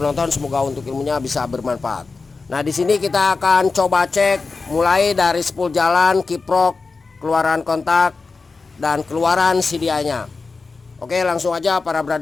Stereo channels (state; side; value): quieter; right; 4.2 dB